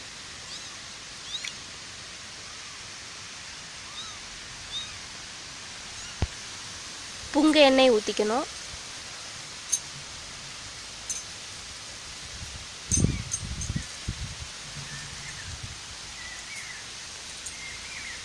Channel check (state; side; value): identical; both; correlation 1.00